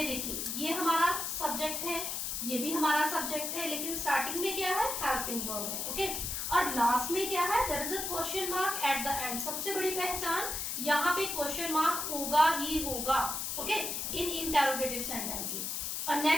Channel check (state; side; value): noise; left; hiss, 2 dB below the sound